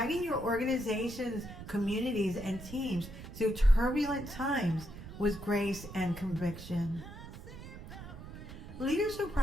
your organizations, communities, and teams through turbulent times with grace and conviction. Leaders who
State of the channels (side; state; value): right; noise; rumble, 12 dB below the sound